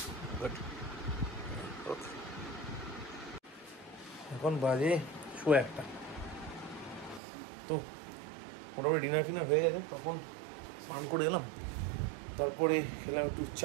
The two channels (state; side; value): drops out; left; at 7.2 s